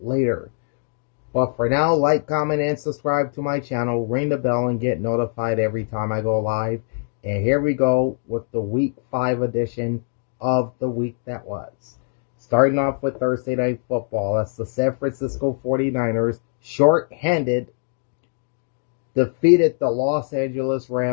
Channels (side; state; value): right; silent; digital silence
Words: But for now, like, comment, and subscribe to my channel. Ring the bell and get notified every time I go live. And here we go with the Week 5 edition of the week that was. Starting off with Thursday Night Football. That's the San Francisco 49ers, short-handed, defeated the Los Angeles